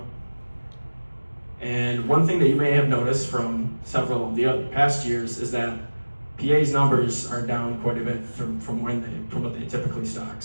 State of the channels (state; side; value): inverted; both; correlation -1.00